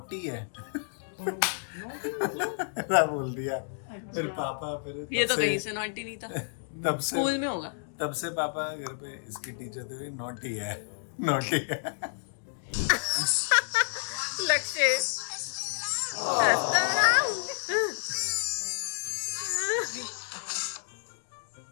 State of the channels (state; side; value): silent; right; digital silence